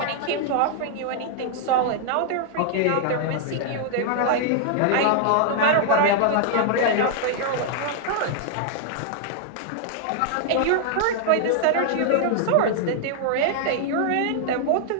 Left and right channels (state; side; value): different; both; correlation -0.01